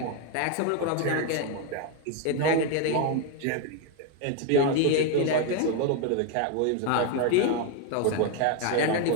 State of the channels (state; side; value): different; both; correlation 0.01